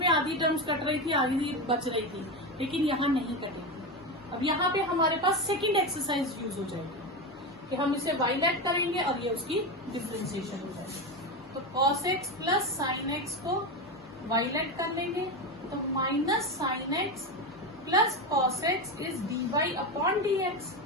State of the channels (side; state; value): left; noise; hum, 29 dB below the sound